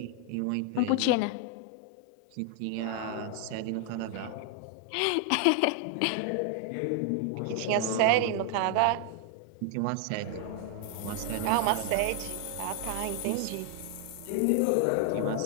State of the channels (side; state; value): both; different; correlation 0.00